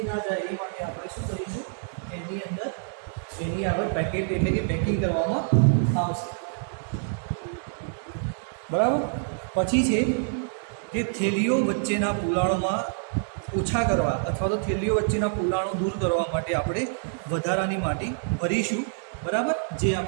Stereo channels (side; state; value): left; silent; digital silence